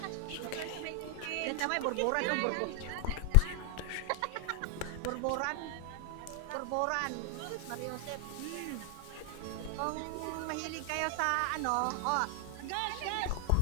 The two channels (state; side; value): different; both; correlation 0.00